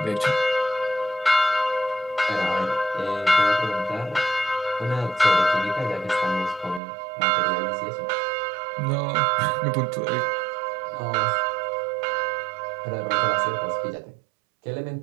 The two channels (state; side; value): drops out; left; at 6.8 s